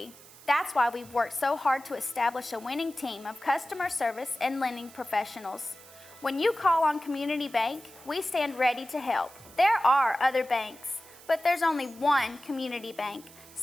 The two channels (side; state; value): right; noise; hiss, 21 dB below the sound